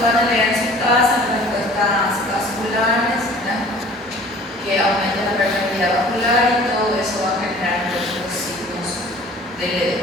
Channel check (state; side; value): normal; both; correlation 0.48